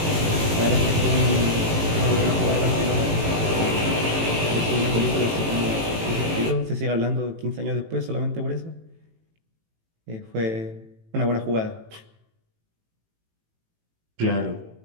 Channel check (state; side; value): late; left; 18 ms